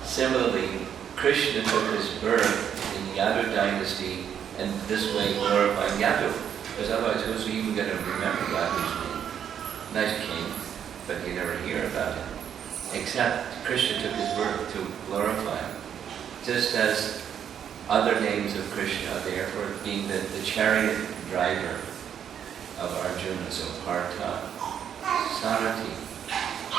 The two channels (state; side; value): quieter; left; 8.8 dB